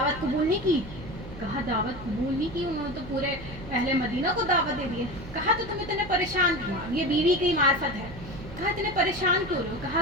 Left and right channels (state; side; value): noise; right; hum, 14 dB below the sound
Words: قبول نہیں کی؟ کہا دعوت قبول نہیں کی, انہوں نے تو پورے اہل مدینہ کو دعوت دے دی ہے. کہا تو تم اتنے پریشان کیوں؟ یہ بیوی کی معرفت ہے. کہا اتنے پریشان کیوں ہو؟ کہا